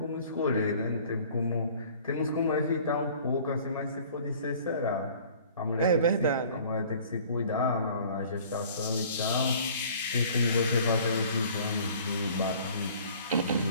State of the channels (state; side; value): inverted; both; correlation -0.51